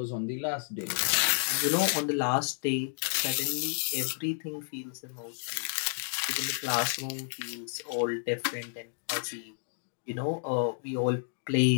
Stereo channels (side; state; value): right; silent; digital silence